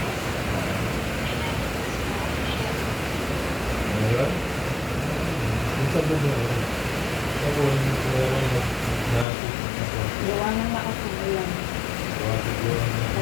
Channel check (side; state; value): right; drops out; at 9.2 s